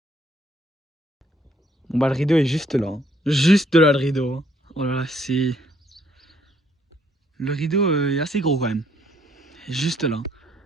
Bon bah le rideau est juste là. Hein. Juste là le rideau. Hein. Oh là là c'est... Le rideau est assez gros quand même. Juste là.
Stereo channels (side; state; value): both; normal; correlation 0.68